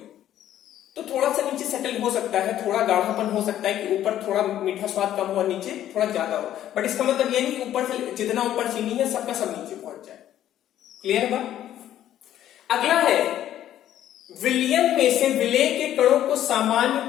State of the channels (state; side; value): quieter; right; 11.9 dB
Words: तो थोड़ा सा नीचे सेटल हो सकता है, थोड़ा गाढ़ापन हो सकता है कि ऊपर थोड़ा मीठा स्वाद कम हो और नीचे थोड़ा ज्यादा हो। बट इसका मतलब ये नहीं कि ऊपर से जितना ऊपर चीनी है सबका सब नीचे पहुंच जाए। क्लियर है? अगला है विलयन में से विलेय के कणों को सामान्य